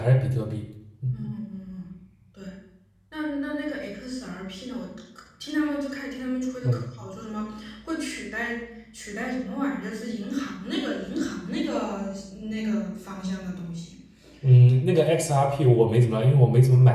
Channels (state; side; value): identical; both; correlation 1.00